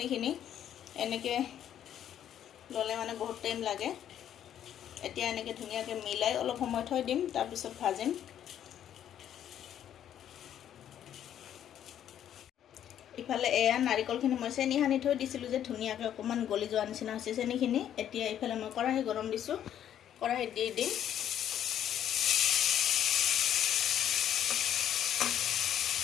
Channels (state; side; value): quieter; right; 10.3 dB